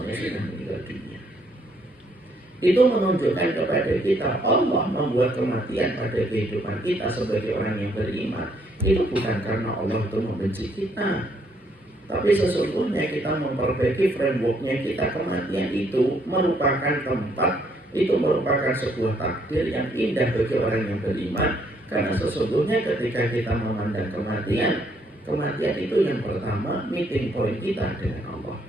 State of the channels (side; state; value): both; normal; correlation 0.69